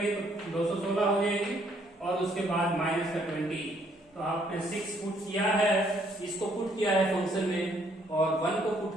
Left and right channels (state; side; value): normal; both; correlation 0.67